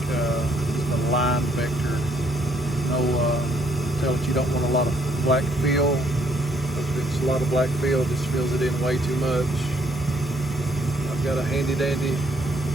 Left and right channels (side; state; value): both; normal; correlation 0.68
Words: a line vector. Tell it you don't want a lot of black fill, because if it's a lot of black fill, it just fills it in way too much. I've got a handy dandy